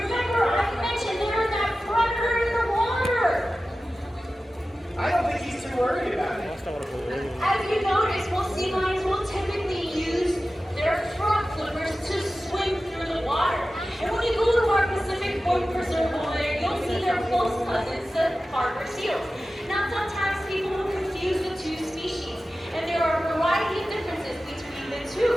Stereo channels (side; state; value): both; normal; correlation 0.95